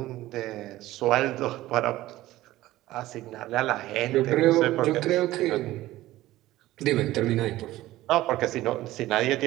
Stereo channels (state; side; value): quieter; left; 16.2 dB